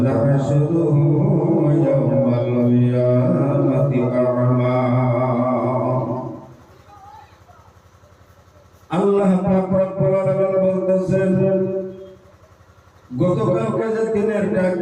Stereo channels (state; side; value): identical; both; correlation 1.00